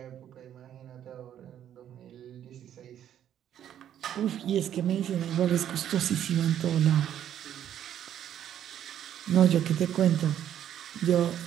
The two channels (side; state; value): left; quieter; 10.4 dB